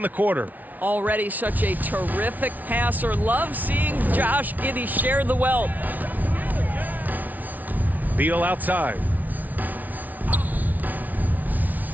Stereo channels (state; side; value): late; left; 0.078 ms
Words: the quarter. Already such a terrific passer. Love seeing Josh Giddey share the wealth. Beal outside.